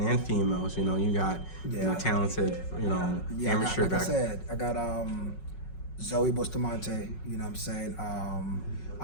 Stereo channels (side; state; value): right; late; 5.4 ms